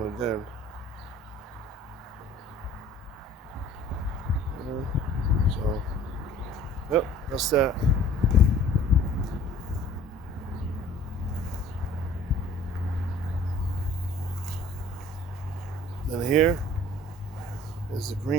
it then. Yeah. So, yep, that's that. Then here is the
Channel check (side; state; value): both; normal; correlation 0.50